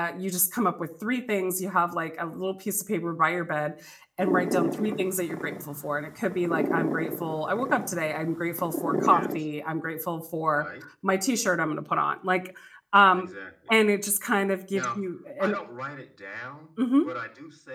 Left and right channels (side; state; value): both; identical; correlation 1.00